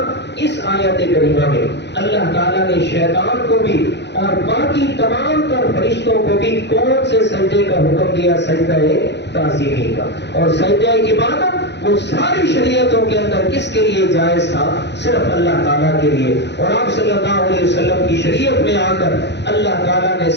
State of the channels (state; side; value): late; right; 0.50 ms